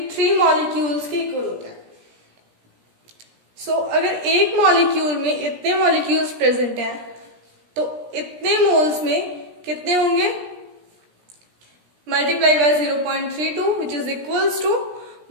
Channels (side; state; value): left; late; 17 ms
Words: molecules के इक्वल होता है। सो अगर एक मॉलिक्यूल में इतने मॉलिक्यूल्स प्रेजेंट हैं तो इतने मोल्स में कितने होंगे? multiply by 0.32 which is equals to